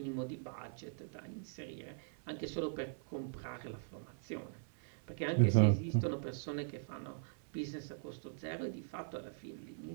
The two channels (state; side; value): silent; left; 51 dB below the other